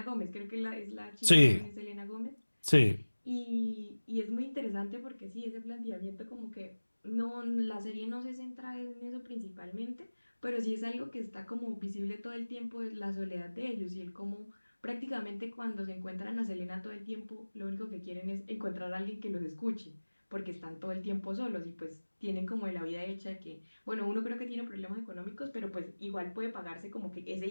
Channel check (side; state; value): both; inverted; correlation -1.00